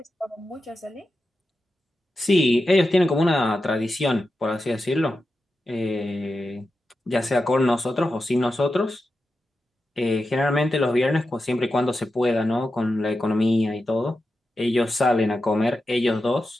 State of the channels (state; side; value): normal; both; correlation 0.90